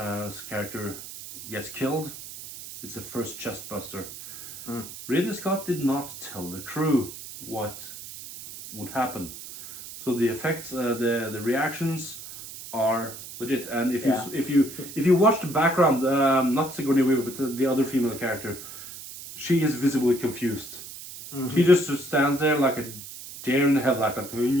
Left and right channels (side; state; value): right; noise; hiss, 12 dB below the sound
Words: character gets killed, it's the first chest buster. Ridley Scott did not tell the crew what would happen, so the effects, the reactions are legit. And if you watch the background, not Sigourney Weaver, but the other female character, she is visibly confused. She just stands there like a deer in the headlight, like